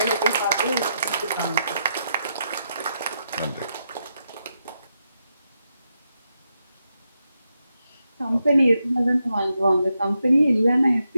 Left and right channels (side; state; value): both; inverted; correlation -0.84